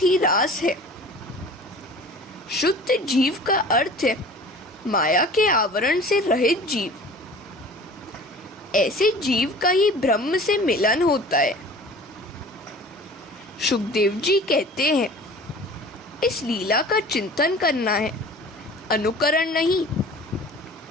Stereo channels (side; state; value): both; normal; correlation 0.43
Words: रास है। शुद्ध जीव का अर्थ है माया के आवरण से रहित जीव। ऐसे जीव का ही ब्रह्म से मिलन होता है। सुखदेव जी कहते हैं, इस लीला का चिंतन करना है, अनुकरण नहीं।